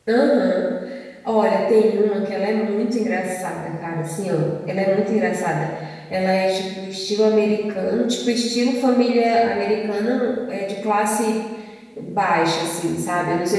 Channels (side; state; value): both; identical; correlation 1.00